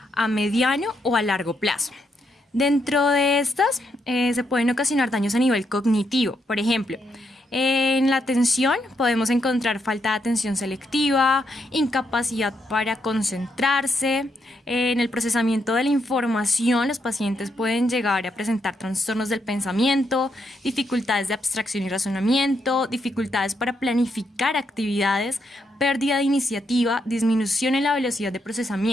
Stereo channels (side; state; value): both; normal; correlation 0.79